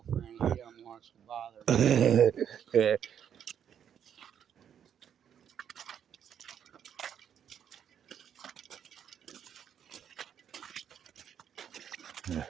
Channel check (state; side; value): quieter; left; 8.8 dB